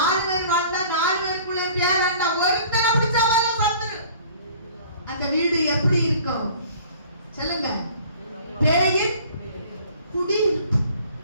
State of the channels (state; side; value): inverted; both; correlation -0.50